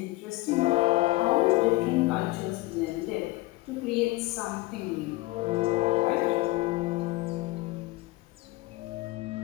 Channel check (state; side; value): quieter; right; 20.2 dB